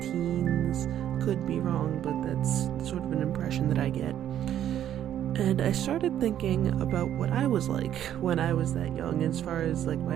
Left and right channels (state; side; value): quieter; left; 10.9 dB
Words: Could be wrong, but that's sort of an impression that I get. And I started thinking about what I was like when I was that young as far as like